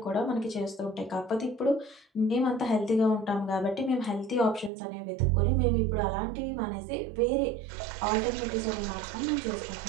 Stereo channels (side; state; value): left; drops out; at 4.7 s